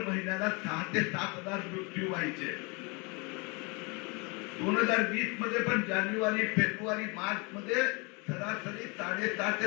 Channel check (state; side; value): quieter; right; 30.1 dB